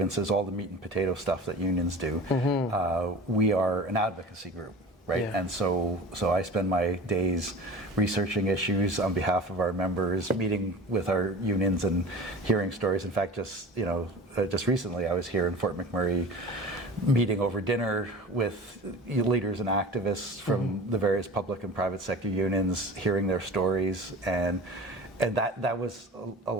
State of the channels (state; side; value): normal; both; correlation 0.38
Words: all the meat and potato stuff that unions do. We are an advocacy group, right? Yeah. And so I spend my days researching issues on behalf of our members, meeting with our unions and hearing stories. In fact, just recently I was here in Fort McMurray, meeting over dinner with leaders and activists from the various public and private sector unions, hearing their stories, and that was a